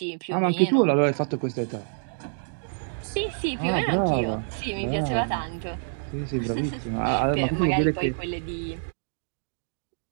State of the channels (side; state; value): left; silent; digital silence